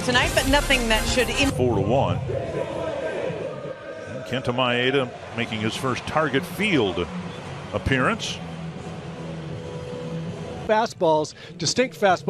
tonight, but nothing that should. 4-1. Kenta Maeda making his first target field appearance. Fastballs, distinct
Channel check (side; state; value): both; identical; correlation 1.00